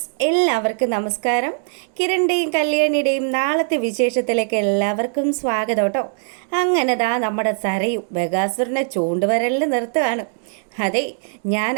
എല്ലാവർക്കും നമസ്കാരം. കിരണിൻ്റെയും കല്യാണിയുടെയും നാളത്തെ വിശേഷത്തിലേക്ക് എല്ലാവർക്കും സ്വാഗതം കേട്ടോ. അങ്ങനെ നമ്മുടെ സരയും ബഗാസുരനെ ചൂണ്ടുവരലിൽ നിർത്തുകയാണ്. അതെ, ഞാൻ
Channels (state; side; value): silent; left; 65 dB below the other